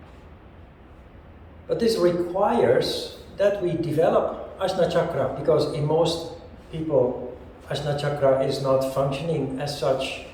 But this requires that we develop Ajna Chakra, because in most people, Ajna Chakra is not functioning as such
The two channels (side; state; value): both; identical; correlation 1.00